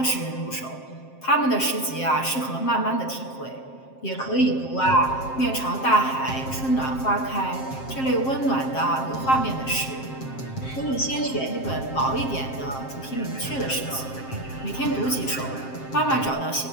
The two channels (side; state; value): right; late; 7.6 ms